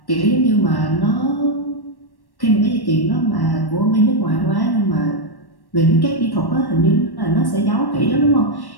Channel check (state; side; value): late; right; 1.1 ms